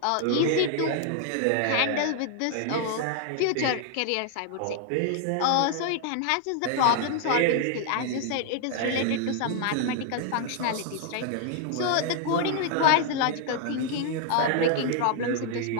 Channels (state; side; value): different; both; correlation 0.00